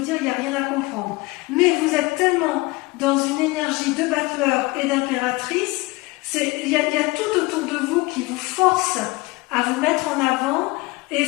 dire, il n'y a rien à comprendre. Mais vous êtes tellement dans une énergie de battleur et d'impératrice, il y a tout autour de vous qui vous force à vous mettre en avant et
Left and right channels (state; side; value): quieter; right; 22.7 dB